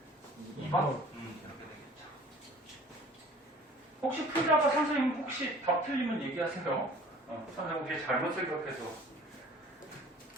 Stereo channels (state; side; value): normal; both; correlation 0.49